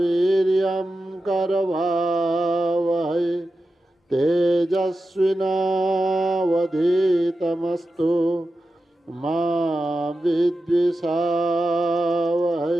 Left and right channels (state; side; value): normal; both; correlation 0.91